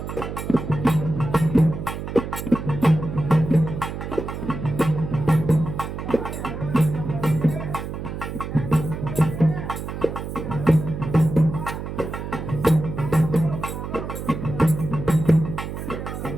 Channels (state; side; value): noise; right; hum, 7 dB below the sound